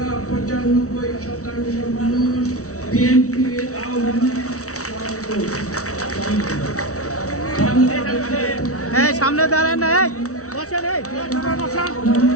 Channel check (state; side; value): late; right; 0.65 ms